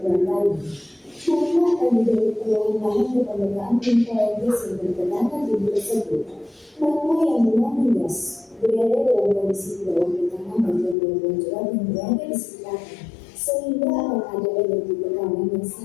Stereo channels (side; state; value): right; drops out; at 11.0 s